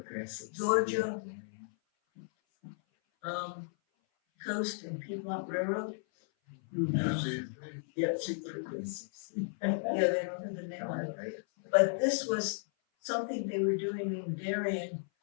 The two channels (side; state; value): right; silent; 55 dB below the other